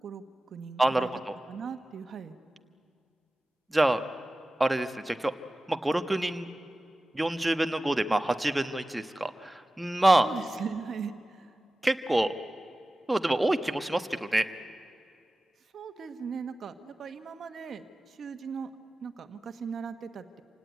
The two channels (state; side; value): normal; both; correlation 0.96